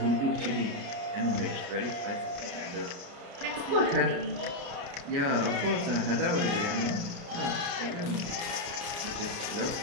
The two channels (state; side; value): late; left; 29 ms